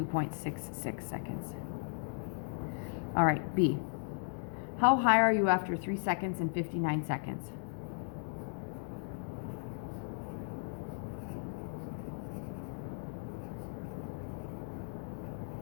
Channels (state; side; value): silent; right; digital silence